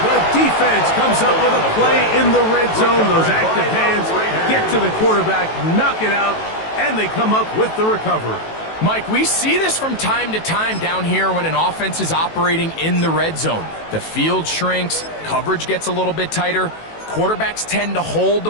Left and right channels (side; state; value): right; late; 18 ms